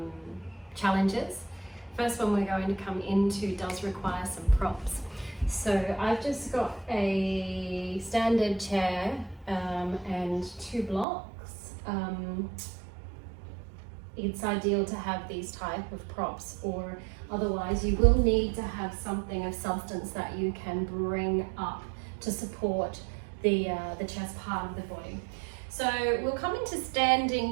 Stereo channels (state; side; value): drops out; left; at 11.1 s